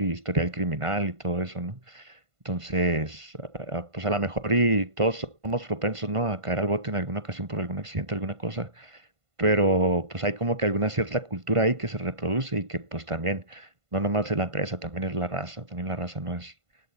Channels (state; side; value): late; left; 1.5 ms